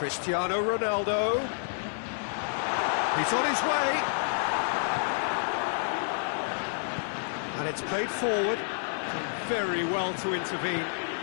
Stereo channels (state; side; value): silent; right; digital silence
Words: Ronaldo. He's on his way. And it's played forward. Done very well to intervene.